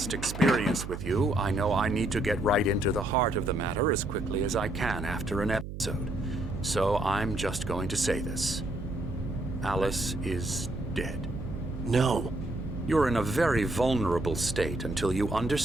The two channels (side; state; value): right; noise; hum, 9 dB below the sound